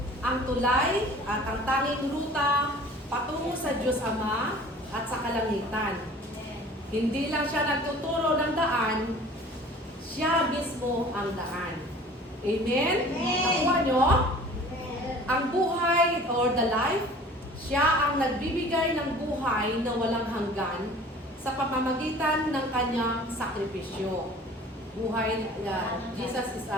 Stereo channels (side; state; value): both; normal; correlation 0.46